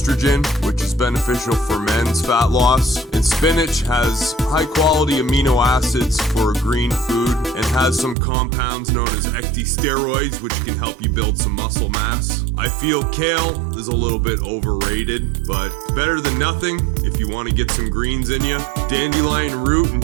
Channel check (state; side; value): drops out; left; at 8.2 s